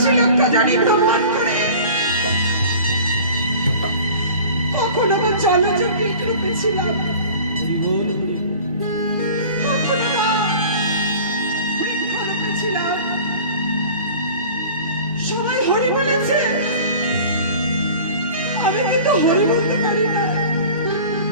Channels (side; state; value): both; inverted; correlation -0.42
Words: লক্ষ জানি ভ্রমণ করে, কখনো বা জলজ কীট রূপে ছিলাম, কখনো বা বৃক্ষ রূপে ছিলাম। সবাই হরি বলেছে, আমি কিন্তু হরি বলতে পারি না।